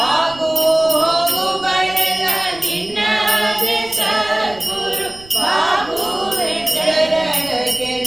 ಆಗು ಹೋಗುಗಳೆಲ್ಲ ನಿನ್ನದೇ ಸದ್ಗುರು ಬಾಗುವೆ ಚರಣಕ್ಕೆ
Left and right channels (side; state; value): right; noise; rumble, 21 dB below the sound